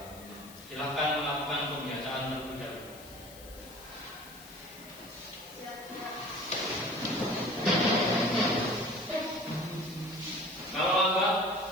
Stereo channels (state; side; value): noise; left; hiss, 18 dB below the sound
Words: Silakan melakukan pembacaan terlebih dahulu. Kalau lambat,